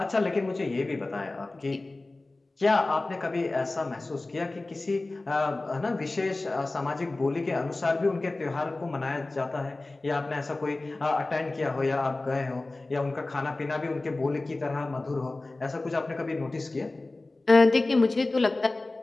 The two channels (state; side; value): quieter; right; 3.1 dB